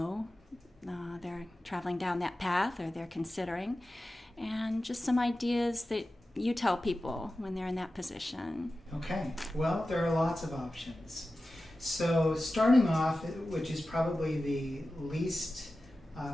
they're traveling down that path or they're considering. And just some ideas that you tell people when they're in that position. Okay. Well, there are lots of options. So starting off, which is probably the least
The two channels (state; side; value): normal; both; correlation 0.94